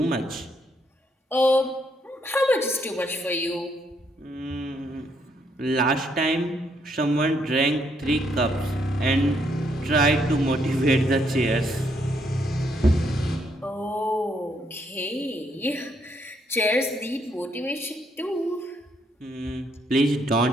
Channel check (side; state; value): both; normal; correlation 0.73